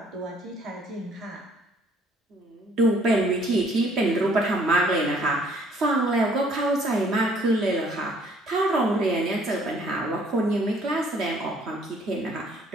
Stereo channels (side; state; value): both; normal; correlation 0.61